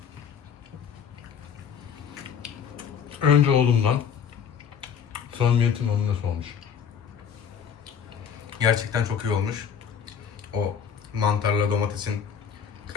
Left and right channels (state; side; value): quieter; right; 7.7 dB